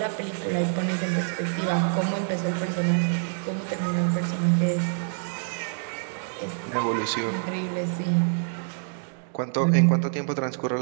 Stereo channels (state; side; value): silent; left; digital silence